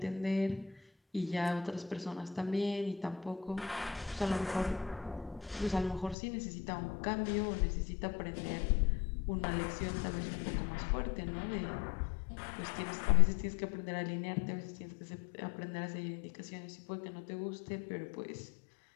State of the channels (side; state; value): right; drops out; at 6.2 s